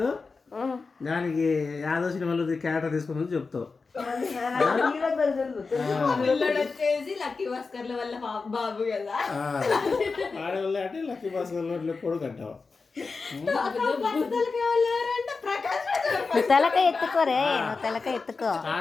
దానికి యాదవ్ సినిమాలో క్యారెక్టర్ తీసుకుని చెప్తావు. ఆడవాళ్ళు అంటే లక్కీ భాస్కర్ కొడుకు అంటావు. తలక ఎత్తుకోరే, తలక ఎత్తుకో.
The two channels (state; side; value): quieter; right; 4.4 dB